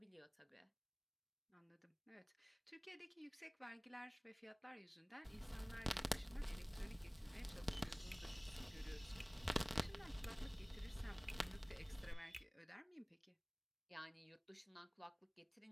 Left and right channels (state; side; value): identical; both; correlation 1.00